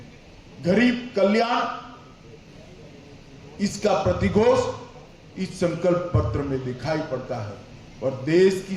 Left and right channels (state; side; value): identical; both; correlation 1.00